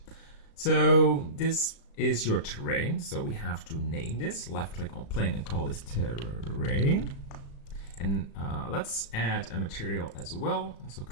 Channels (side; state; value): right; late; 36 ms